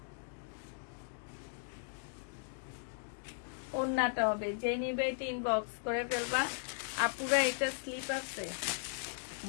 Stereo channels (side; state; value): right; silent; digital silence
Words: ওড়নাটা হবে। যে নিবে এটা ইনবক্স করে ফেলবা। আপুরা এটা স্লিপ আছে,